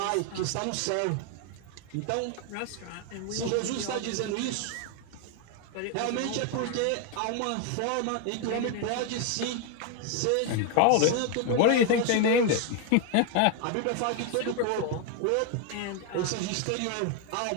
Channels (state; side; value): different; both; correlation 0.01